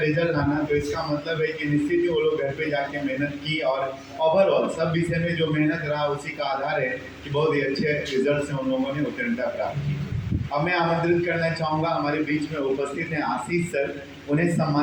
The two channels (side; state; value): both; identical; correlation 1.00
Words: लाना, तो इसका मतलब है कि निश्चित ही वो लोग घर पे जाके मेहनत की और ओवरऑल सब विषय में जो मेहनत रहा उसी का आधार है कि बहुत ही अच्छे रिजल्ट से उन लोगों ने उत्तीर्णता प्राप्त की। अब मैं आमंत्रित करना चाहूँगा, हमारे बीच में उपस्थित हैं आशीष सर, उन्हें